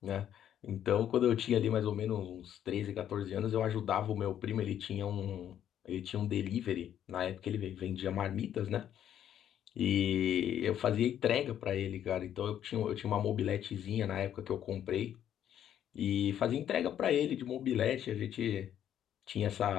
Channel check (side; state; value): right; quieter; 10.3 dB